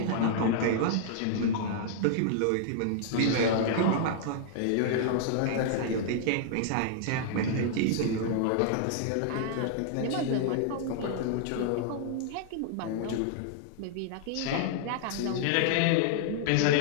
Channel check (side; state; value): both; different; correlation -0.01